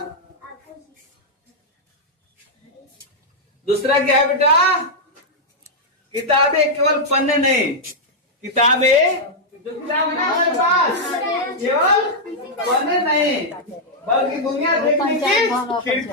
दूसरा क्या है बेटा? किताबें केवल पन्ने नहीं, किताबें जो किताब है ना हमारे पास केवल पन्ने नहीं बल्कि दुनिया देखने की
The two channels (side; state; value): both; normal; correlation -0.05